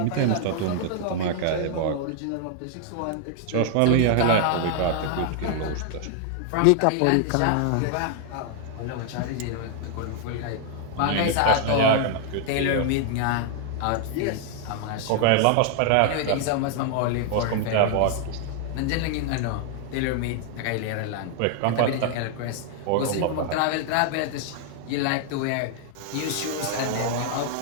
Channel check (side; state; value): both; different; correlation 0.00